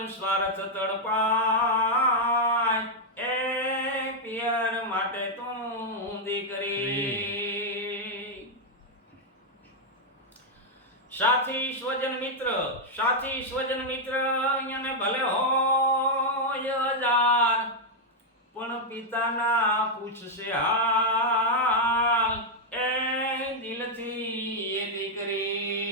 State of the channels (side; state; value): both; normal; correlation -0.02